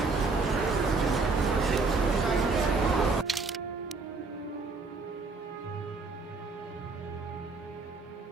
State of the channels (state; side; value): quieter; left; 4.0 dB